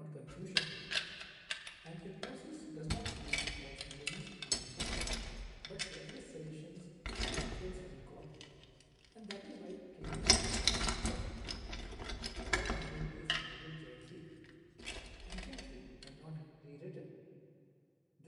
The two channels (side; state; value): both; identical; correlation 1.00